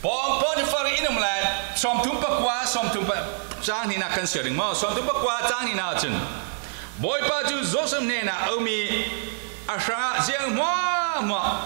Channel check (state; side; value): silent; left; digital silence